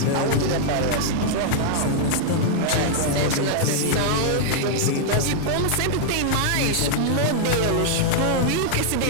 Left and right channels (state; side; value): different; both; correlation -0.01